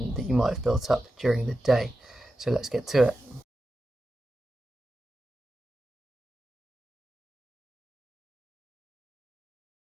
that you might have built up during the day. So let's get to it.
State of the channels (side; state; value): both; normal; correlation 0.92